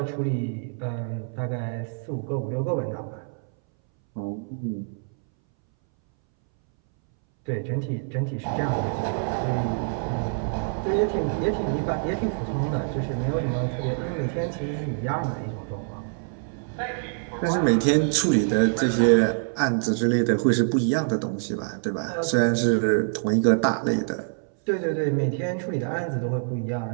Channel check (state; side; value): silent; left; 61 dB below the other